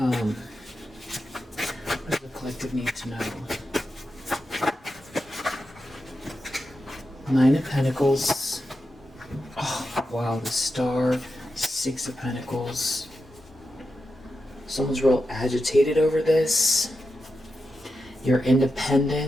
What does the collective need to know? 9 of Pentacles. Oh, wow, the Star. 6 of Pentacles. Someone's real agitated over this. Your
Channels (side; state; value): both; normal; correlation 0.89